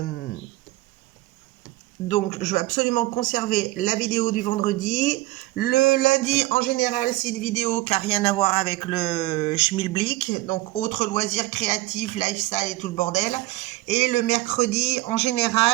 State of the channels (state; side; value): quieter; left; 19.0 dB